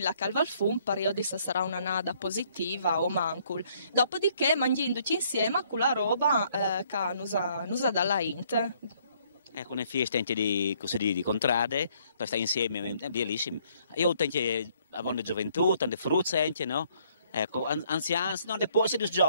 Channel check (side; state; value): both; inverted; correlation -0.65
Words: la calva al fum per io disse sarà una nada positiva o mancul dopodiché mangiando insieme con la roba che nusa dalla int. Ecco, una festa anche di contrade, per stare insieme, è bellissimo. Io tengo a gioventù, tante fruzze anche, no? Ecco, anziani, no, poi